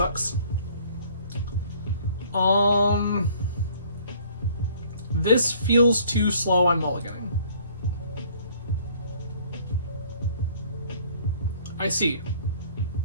This feels too slow, I'm mulliganing. I see.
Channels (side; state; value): both; inverted; correlation -0.55